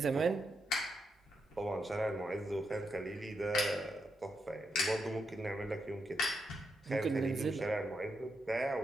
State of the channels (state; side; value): normal; both; correlation 0.83